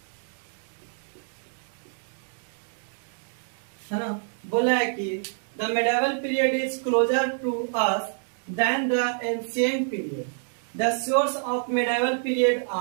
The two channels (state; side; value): silent; left; 60 dB below the other